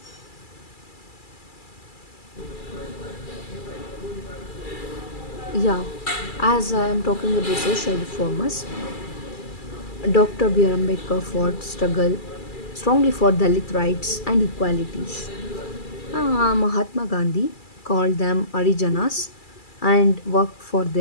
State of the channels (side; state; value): right; late; 2.3 ms